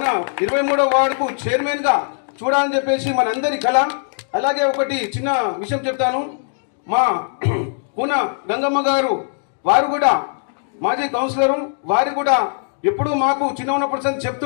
23వ వార్డుకు చైర్మన్గా చూడాలని చెప్పేసి మనందరి కళ. అలాగే ఒకటి చిన్న విషయం చెప్తాను. మా కూన గంగమ్మ గారు వారు కూడా మాజీ కౌన్సిలరు, వారు కూడా ఎప్పుడు మాకు చిన్న ఉన్నప్పుడు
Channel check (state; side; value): silent; right; digital silence